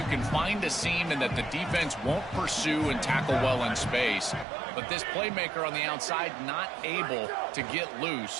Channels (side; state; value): left; drops out; at 4.5 s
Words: can find a seam and that the defense won't pursue and tackle well in space. But this playmaker on the outside not able to get